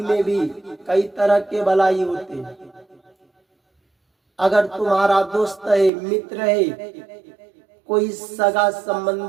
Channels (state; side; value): drops out; left; at 5.9 s